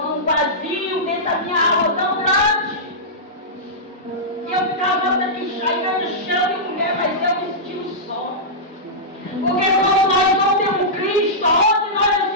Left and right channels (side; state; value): both; normal; correlation -0.13